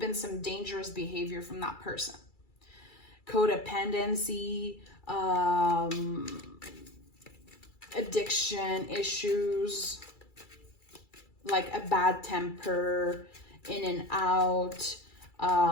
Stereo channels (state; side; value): late; right; 2.3 ms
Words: some dangerous behavior from that person. Codependency, addiction issues, like a bad temper, in and out,